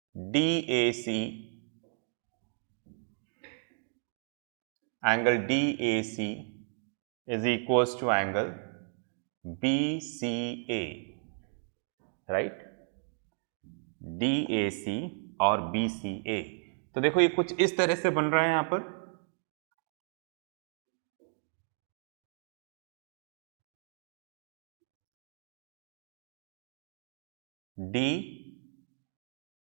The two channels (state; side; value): silent; left; 55 dB below the other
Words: DAC, angle DAC is equals to angle BCA, right, DAC और BCA। तो देखो ये कुछ इस तरह से बन रहा है यहां पर। DAC